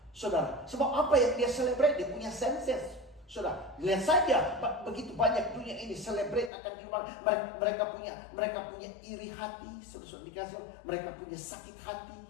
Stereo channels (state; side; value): drops out; right; at 6.5 s